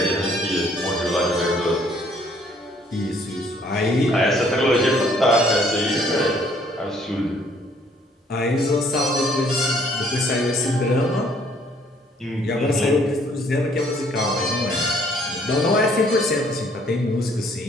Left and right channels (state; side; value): normal; both; correlation 0.63